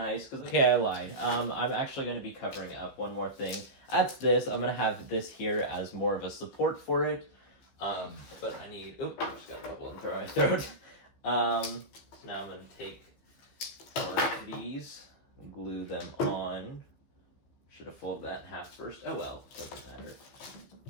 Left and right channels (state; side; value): late; right; 15 ms